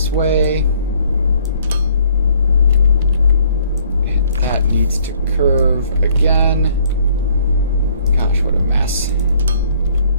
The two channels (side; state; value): both; inverted; correlation -0.61